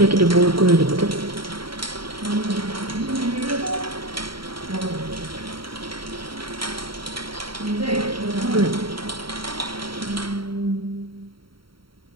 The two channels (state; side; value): late; left; 0.74 ms